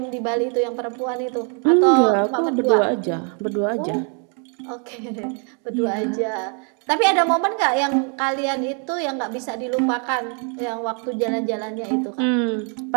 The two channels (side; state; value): left; quieter; 40.0 dB